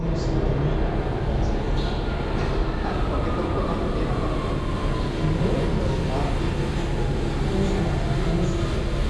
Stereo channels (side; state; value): both; identical; correlation 1.00